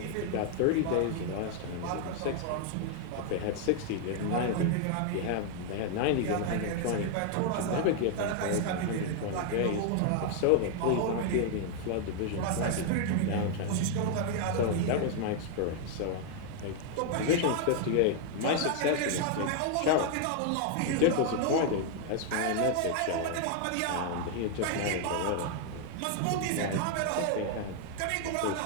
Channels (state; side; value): different; both; correlation 0.00